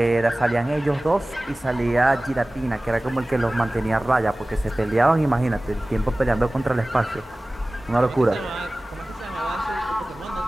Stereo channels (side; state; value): both; normal; correlation 0.98